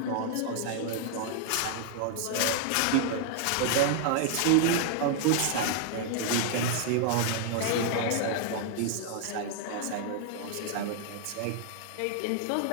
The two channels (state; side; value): different; both; correlation 0.00